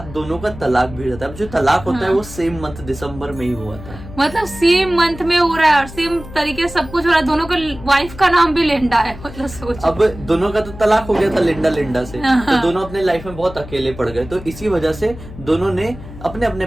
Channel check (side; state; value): left; noise; hum, 14 dB below the sound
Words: दोनों का तलाक भी हो जाता है। अब जो तलाक होता है वो सेम मंथ दिसंबर में ही हुआ था। मतलब सेम मंथ में हो रहा है और सेम तरीके से सब कुछ हो रहा है। दोनों का वाइफ का नाम भी लिंडा है। मतलब सोच, अब दोनों का तो तलाक हो गया था लिंडा से, तो दोनों अपने लाइफ में बहुत अकेले पड़ गए। तो इसी वजह से दोनों ने अपने अपने